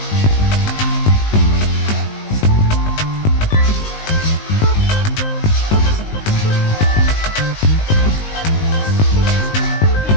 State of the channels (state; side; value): late; right; 19 ms